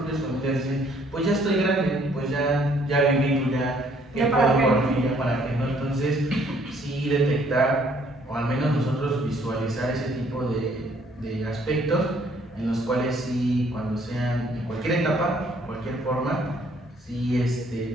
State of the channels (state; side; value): normal; both; correlation 0.63